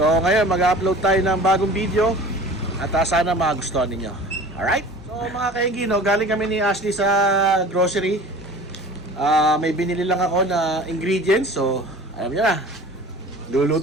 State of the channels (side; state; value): both; normal; correlation 0.42